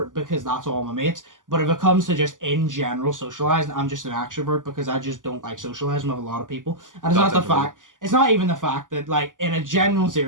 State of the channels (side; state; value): left; late; 0.88 ms